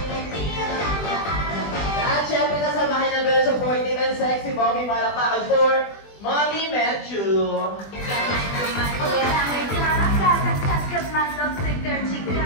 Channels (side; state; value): right; late; 20 ms